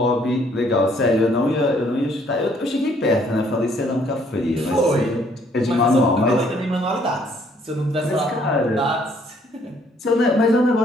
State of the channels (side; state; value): both; normal; correlation 0.64